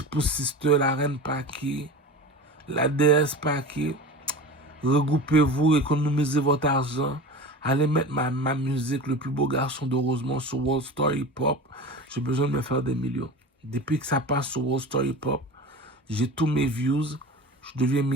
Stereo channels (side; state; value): both; normal; correlation 0.32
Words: Sister, la reine Paki. La déesse Paki. Regroupez-vous, économisez votre argent. Allez mettre ma musique, le plus beau garçon de Rosemont, sur World Star Hip Hop. J'ai besoin de me faire des millions. Depuis que ça passe sur World Star Hip Hop, j'ai tous mes views. Je deviens